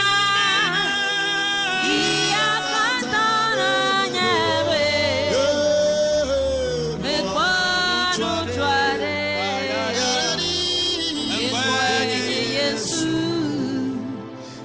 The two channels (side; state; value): both; identical; correlation 1.00